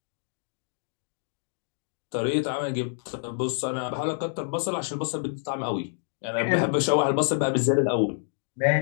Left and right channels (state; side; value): silent; right; digital silence